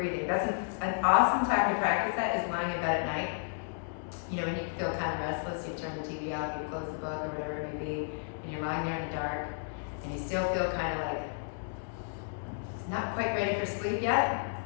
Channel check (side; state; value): right; silent; digital silence